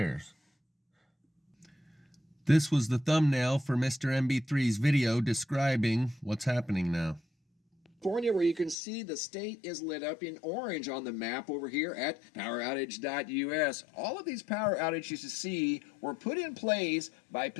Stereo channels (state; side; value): drops out; right; at 8.8 s